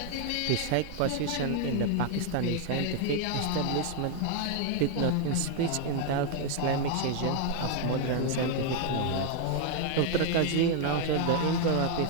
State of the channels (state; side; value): different; both; correlation 0.00